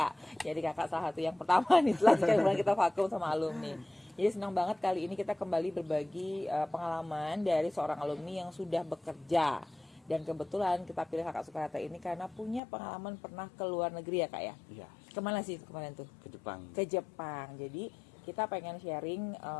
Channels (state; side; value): drops out; right; at 12.6 s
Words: Jadi kakak salah satu yang pertama nih setelah sekian bulan kita vakum sama alumni. Jadi senang banget kali ini kita kembali berbagi pengalaman dari seorang alumni yang sudah bekerja. Dan kebetulan kita pilih kakak Sukarata ini karena punya pengalaman pernah ke luar negeri ya Kak ya? Iya. Kemana sih kemarin tuh? Ke Jepang. Ke Jepang. Jadi kita pengen sharing